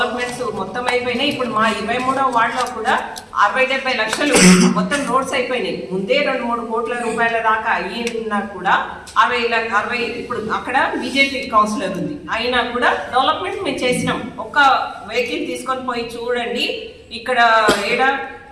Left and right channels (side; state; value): both; identical; correlation 1.00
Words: మొత్తం అయిపోయినాయి. ఇప్పుడు మా 23వ వార్డులో కూడా 60-70 లక్షలు మొత్తం రోడ్స్ అయిపోయినాయి. ముందే 2-3 కోట్ల రూపాయల దాకా అయినా కూడా 60 ఇప్పుడు అక్కడ బీజేపీ కౌన్సిలర్ ఉంది, అయినా కూడా డెవలప్మెంట్ మేము చేసినాం. ఒక్క వెహికల్ తీసుకొని పోయి చూడండి. ఇక్కడ